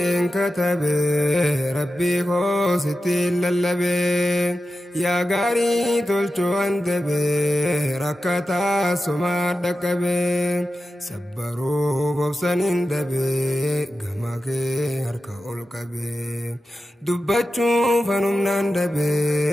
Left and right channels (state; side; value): normal; both; correlation 0.92